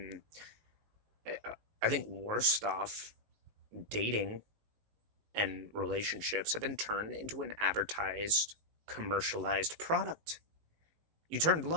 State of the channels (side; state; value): left; late; 19 ms